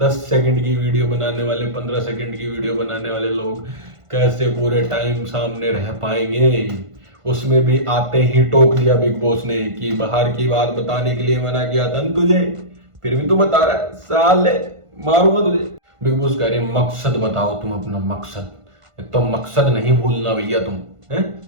सेकंड की वीडियो बनाने वाले, 15 सेकंड की वीडियो बनाने वाले लोग कैसे पूरे टाइम सामने रह पाएंगे? उसमें भी आते ही टोक दिया बिग बॉस ने कि बाहर की बात बताने के लिए मना किया था न तुझे, फिर भी तू बता रहा है, साले मारूंगा तुझे। बिग बॉस कह रहे मकसद बताओ तुम अपना मकसद। एक तो मकसद नहीं भूलना भैया तुम, है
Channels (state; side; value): late; left; 1.5 ms